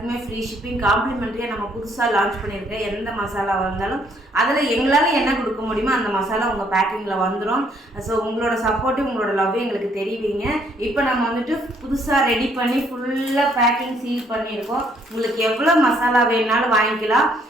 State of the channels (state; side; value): normal; both; correlation 0.67